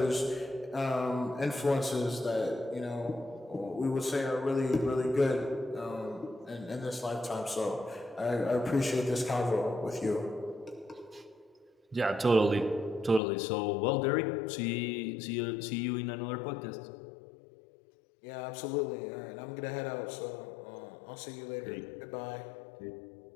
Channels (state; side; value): drops out; right; at 13.2 s